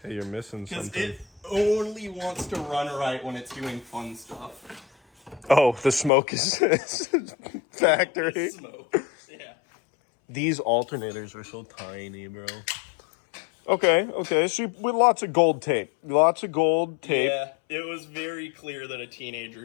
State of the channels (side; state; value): right; drops out; at 6.1 s